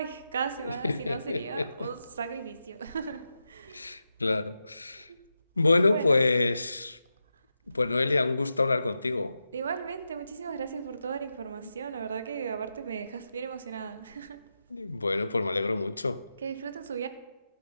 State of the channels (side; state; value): both; inverted; correlation -0.89